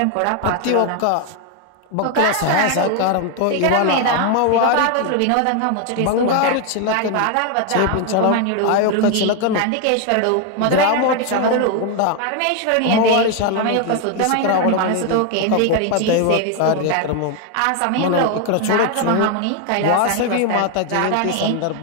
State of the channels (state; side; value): different; both; correlation 0.01